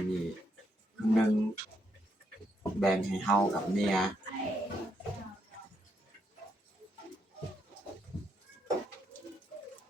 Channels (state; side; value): normal; both; correlation 0.78